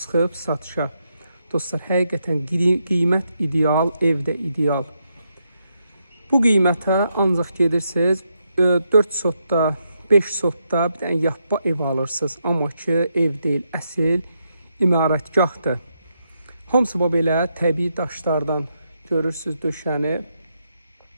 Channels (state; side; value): inverted; both; correlation -0.81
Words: satışa. Dostlar, həqiqətən qiymət ideal, ev də ideal. Bu qiymətə ancaq gedirsiniz 4 sotda, 5 sotda bir dənə yapba ev alırsınız. Amma ki, ev deyil, əsil imarətgahdır. Hamısı belə təbii daşlardan görürsünüz döşəni.